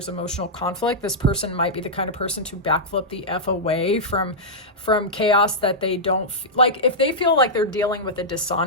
emotional conflict. This person might be the kind of person to backflip the F away from chaos that they don't like. If they feel like they're dealing with a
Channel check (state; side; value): normal; both; correlation -0.10